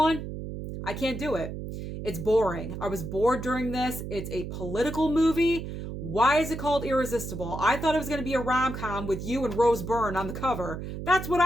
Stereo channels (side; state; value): right; noise; hum, 7 dB below the sound